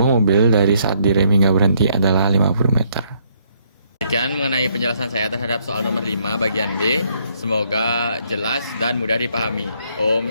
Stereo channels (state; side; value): inverted; both; correlation -0.69